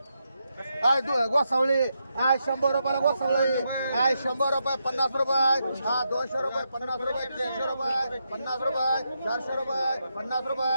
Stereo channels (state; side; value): inverted; both; correlation -0.83